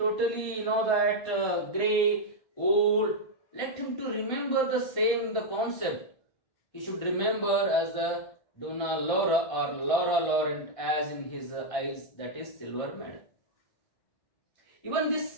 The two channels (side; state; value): right; late; 1.6 ms